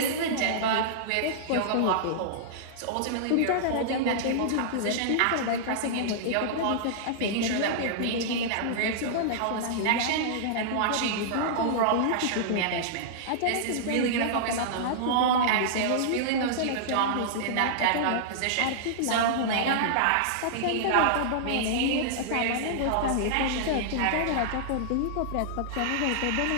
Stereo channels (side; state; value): both; different; correlation -0.02